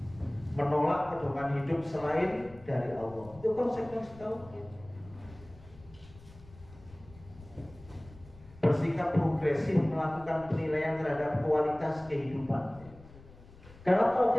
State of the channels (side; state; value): left; noise; rumble, 21 dB below the sound